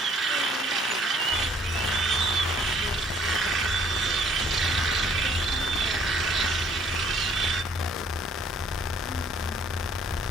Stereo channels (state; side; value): normal; both; correlation 0.60